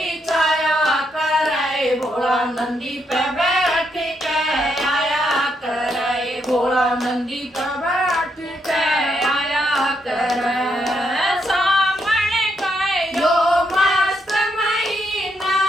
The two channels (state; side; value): normal; both; correlation 0.78